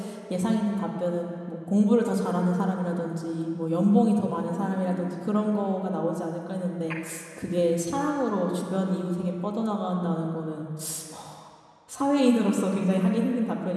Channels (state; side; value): identical; both; correlation 1.00